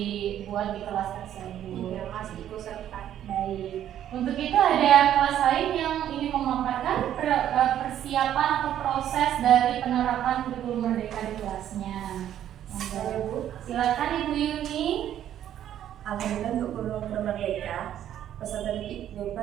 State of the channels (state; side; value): quieter; left; 11.0 dB